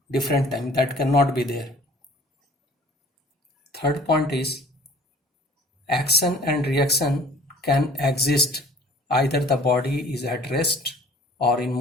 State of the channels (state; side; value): normal; both; correlation 0.50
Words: different time. That cannot be there. Third point is, action and reaction can exist either the body is at rest or in